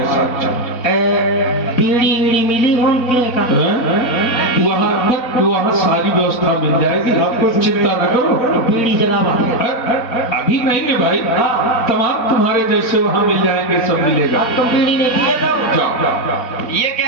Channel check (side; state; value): right; late; 4.0 ms